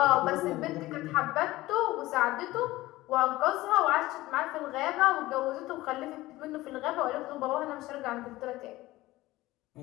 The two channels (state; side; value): quieter; right; 17.9 dB